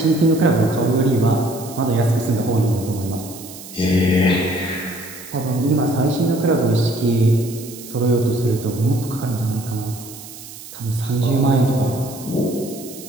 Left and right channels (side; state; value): right; noise; hiss, 15 dB below the sound